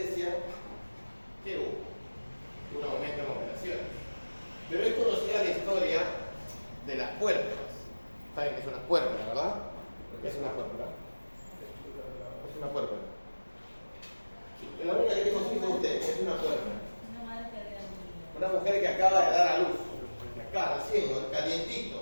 ¿qué hubo? Un aumento en operaciones. Pero es conocida la historia de las puertas. ¿Saben qué es una puerta, verdad? ¿Qué es una puerta? Es una puerta. La única que tengo hijos usted es una puerta. Una mujer que acaba de dar a luz, que acaba recién, calientito.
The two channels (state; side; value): inverted; both; correlation -1.00